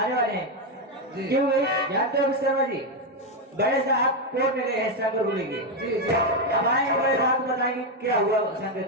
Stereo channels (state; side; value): normal; both; correlation 0.05